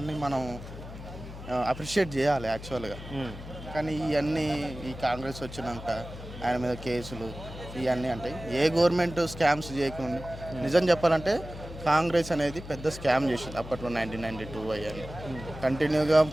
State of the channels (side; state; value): left; noise; hum, 12 dB below the sound